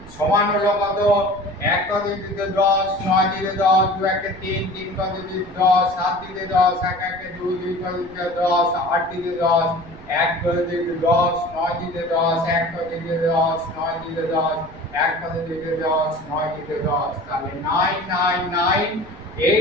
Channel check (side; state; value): right; noise; rumble, 19 dB below the sound